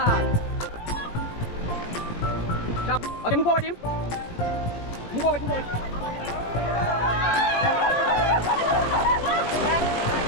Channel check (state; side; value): late; right; 17 ms